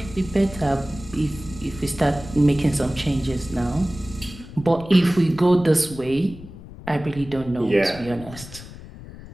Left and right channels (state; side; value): noise; left; rumble, 15 dB below the sound